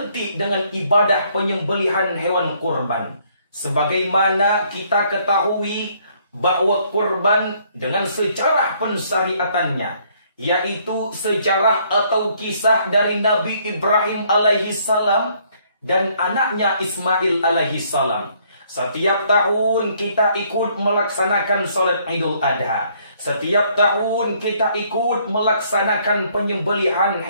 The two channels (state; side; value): inverted; both; correlation -0.66